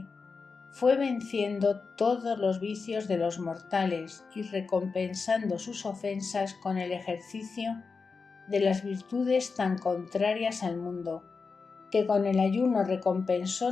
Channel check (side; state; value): right; quieter; 4.7 dB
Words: fue venciendo todos los vicios de los mortales y recompensando sus ofensas con el ejercicio de las virtudes tan contrarias al mundo, que con el ayuno recompensó